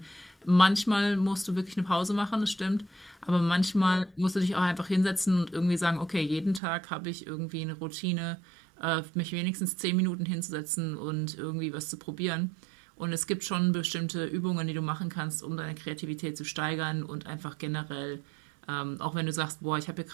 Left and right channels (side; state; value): left; drops out; at 6.6 s